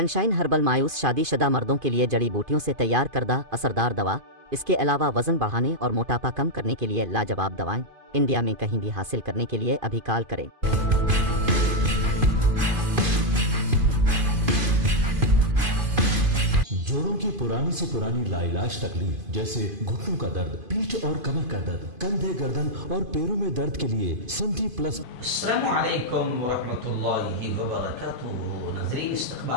ہربل مایوس شادی شدہ مردوں کے لیے جڑی بوٹیوں سے تیار کردہ اثردار دوا، اس کے علاوہ وزن بڑھانے اور موٹاپا کم کرنے کے لیے لاجواب دوائیں انڈیا میں کہیں بھی حاصل کرنے کے لیے ابھی کال کریں۔ جوڑوں کی پرانی سے پرانی لاعلاج تکلیف جیسے گھٹنوں کا درد، پیٹھ اور کمر کا درد، کندھے، گردن اور پیروں میں درد کے لیے سنٹی پلس۔ السلام علیکم ورحمۃ اللہ وبرکاتہ۔ ناظرین،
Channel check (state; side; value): late; left; 2.5 ms